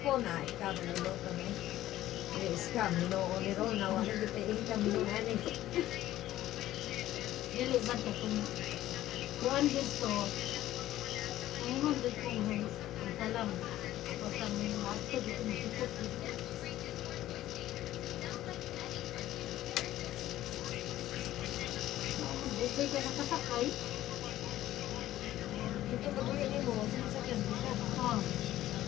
Ikaw maluluto na eh. Iska, minuo ni Rona. Wala kita income minuo na eh. Dili ba ito kung kuhan dito, ang hundred kong salam. Basta may mato dito masipot dito. Okay ka nakasakay? Ito ba tuloy ni mo? Sinasakyan mo ka? Oo.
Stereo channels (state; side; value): quieter; right; 14.2 dB